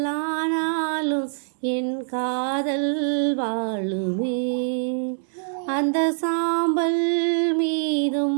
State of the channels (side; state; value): left; silent; digital silence